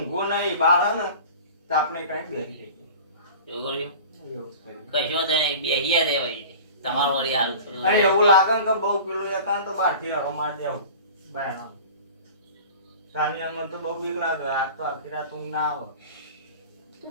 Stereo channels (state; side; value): inverted; both; correlation -0.39